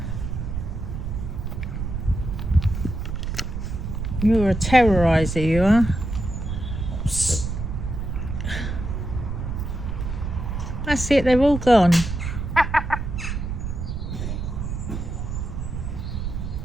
You're a terroriser, you are. That's it, they're all gone.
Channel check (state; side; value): noise; right; rumble, 4 dB below the sound